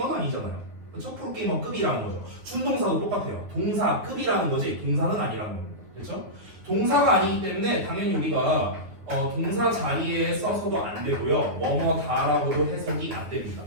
아니잖아요. 그렇죠? 프로게이머급이라는 거죠. 준동사도 똑같아요. 동사급이라는 거지 동사는 아니라는 겁니다. 그렇죠? 동사가 아니기 때문에 당연히 우리가 동사 자리에 써서도 안 되고요. 뭐뭐다라고도 해석이 안 됩니다.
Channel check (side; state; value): left; late; 9.6 ms